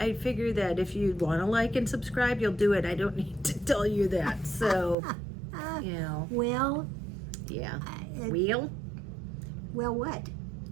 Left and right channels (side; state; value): left; drops out; at 5.0 s